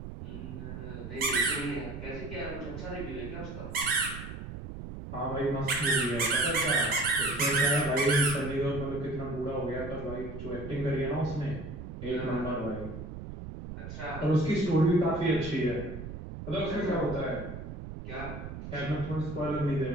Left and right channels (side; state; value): right; noise; rumble, 9 dB below the sound